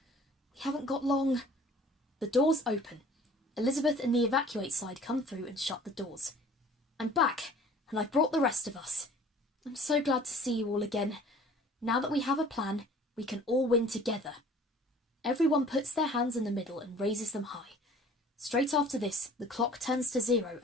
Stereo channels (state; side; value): normal; both; correlation 0.50